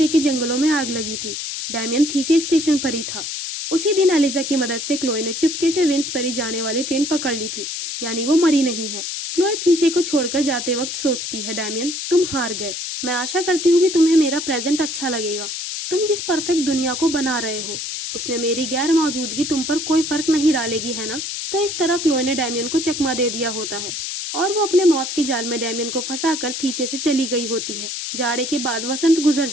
के जंगलों में आग लगी थी, डैमियन थीसे स्टेशन पर ही था। उसी दिन एलिजा की मदद से क्लोए ने चुपके से विंसबरी जाने वाली ट्रेन पकड़ ली थी, यानी वो मरी नहीं है। क्लोए थीसे को छोड़कर जाते वक्त सोचती है, डैमियन, तुम हार गए। मैं आशा करती हूँ कि तुम्हें मेरा प्रेजेंट अच्छा लगेगा। तुम जिस परफेक्ट दुनिया को बना रहे हो उसमें मेरी गैर मौजूदगी तुम पर कोई फर्क नहीं डालेगी, है ना? तो इस तरह क्लोए ने डैमियन को चकमा दे दिया होता है और वो अपने मौत के जाल में डैमियन को फंसाकर थीसे से चली गई होती है। जाड़े के बाद वसंत गुजर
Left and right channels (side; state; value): left; noise; hiss, 5 dB below the sound